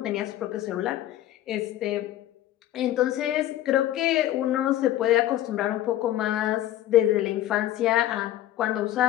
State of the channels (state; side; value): quieter; right; 13.3 dB